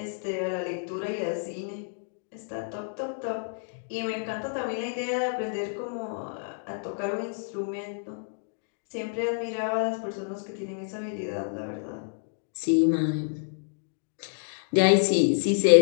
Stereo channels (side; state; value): right; silent; digital silence